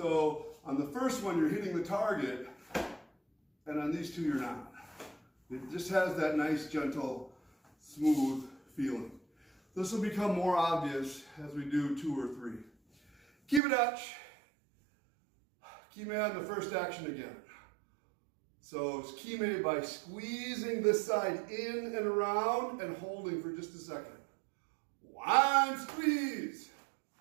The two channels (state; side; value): drops out; left; at 13.6 s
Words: on the first one, you're hitting the target, and on these two, you're not. It just has that nice, gentle, smooth feeling. This will become more obvious as we do 2 or 3. Kibidachi. Kime on the first action again. So it's kime by squeezing this side in and around and holding for just a second. 1, squeeze.